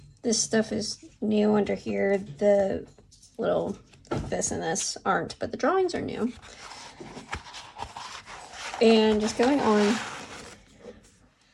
This stuff is new under here. The little this and this aren't, but the drawings are new. And just going on.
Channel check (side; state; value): both; identical; correlation 1.00